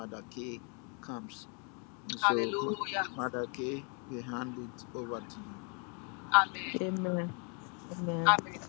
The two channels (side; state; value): right; quieter; 36.9 dB